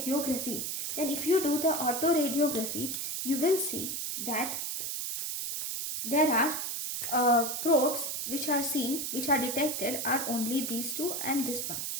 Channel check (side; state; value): right; noise; hiss, 3 dB below the sound